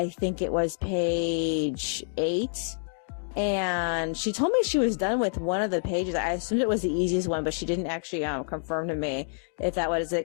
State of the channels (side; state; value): right; silent; digital silence